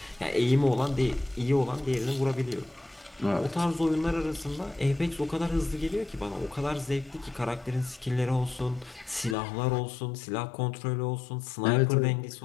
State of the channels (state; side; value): drops out; right; at 9.3 s